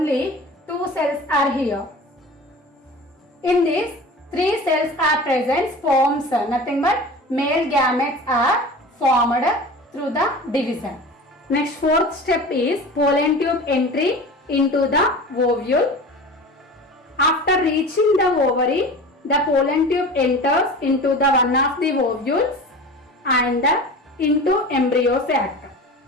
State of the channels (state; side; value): normal; both; correlation 0.36